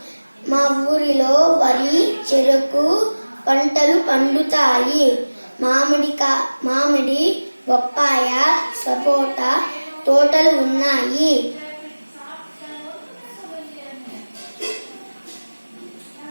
మా ఊరిలో వరి, చెరకు పంటలు పండుతాయి. మామిడి, బొప్పాయ, సపోటా తోటలు ఉన్నాయి.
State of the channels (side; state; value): both; inverted; correlation -1.00